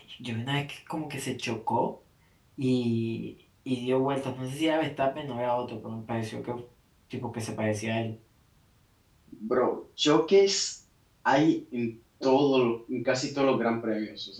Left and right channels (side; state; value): both; identical; correlation 1.00